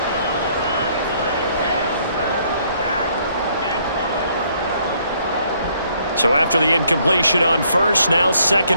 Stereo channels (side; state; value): both; inverted; correlation -0.66